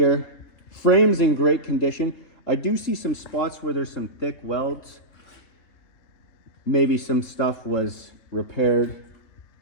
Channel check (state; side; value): late; right; 3.4 ms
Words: Frame's in great condition. I do see some spots where there's some thick welds. Maybe some stuff was repaired,